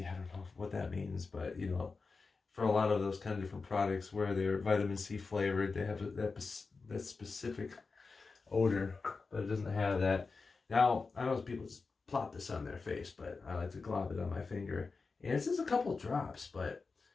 I don't know what that means, but you know, for a lot of those kind of different products where they're vitamin C flavored, they have that specific odor, but it doesn't have that. Now, I know people just plop this on their face, but I like to glob it on my finger. And it's just a couple drops, but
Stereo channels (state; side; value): quieter; right; 4.4 dB